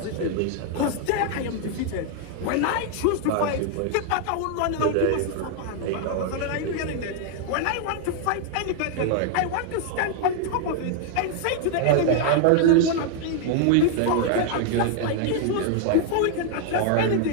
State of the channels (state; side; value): different; both; correlation 0.00